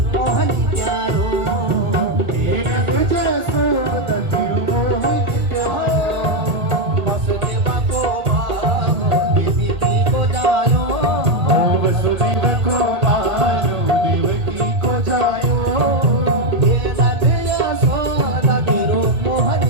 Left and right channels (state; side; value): late; left; 1.6 ms